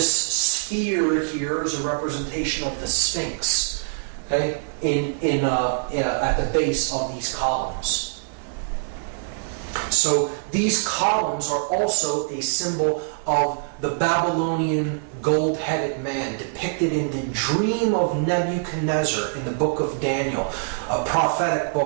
sphere here is a representation of the Sphinx, okay, at the base of these columns. So these columns are also a symbol of the Babylonian gold-headed man depicted in the dream of Nebuchadnezzar in the book of Daniel, a prophetic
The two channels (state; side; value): silent; left; digital silence